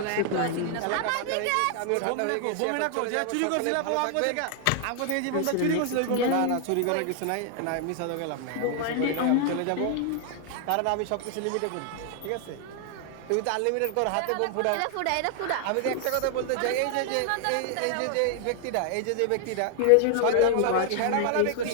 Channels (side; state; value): both; different; correlation 0.00